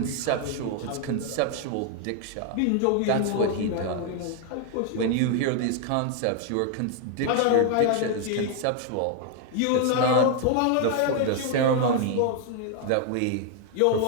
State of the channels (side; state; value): both; different; correlation 0.00